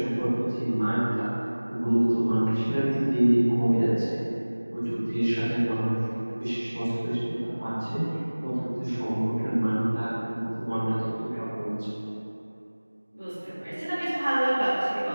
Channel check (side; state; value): both; inverted; correlation -1.00